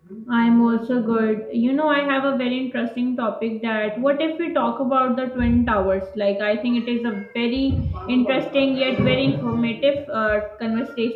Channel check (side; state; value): both; identical; correlation 1.00